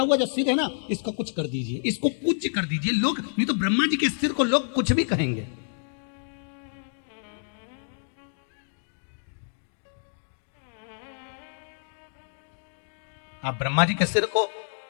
जो सिर है ना इसको कुछ कर दीजिए, इसको पूज्य कर दीजिए। लोग नहीं तो ब्रह्मा जी के सिर को लोग कुछ भी कहेंगे। आप ब्रह्मा जी के सिर को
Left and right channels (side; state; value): right; silent; digital silence